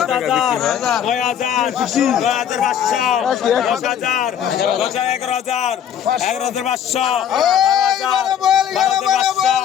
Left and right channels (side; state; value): right; quieter; 9.2 dB